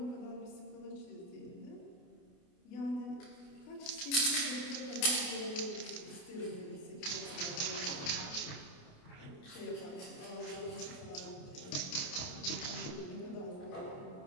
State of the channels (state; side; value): late; right; 28 ms